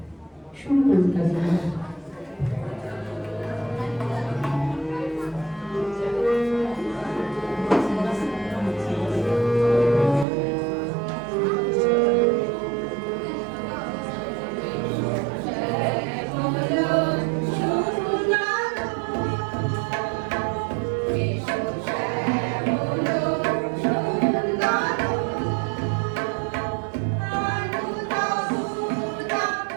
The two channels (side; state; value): left; drops out; at 10.2 s